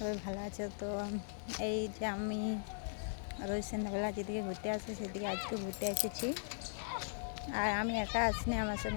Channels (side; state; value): right; silent; digital silence